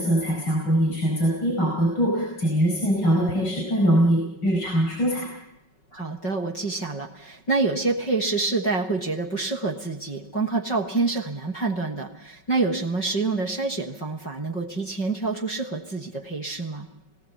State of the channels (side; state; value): right; late; 5.3 ms